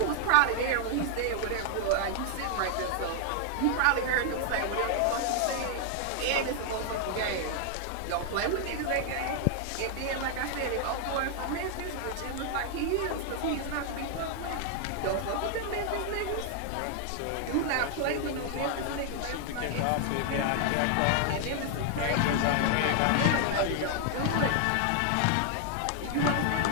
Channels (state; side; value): different; both; correlation 0.00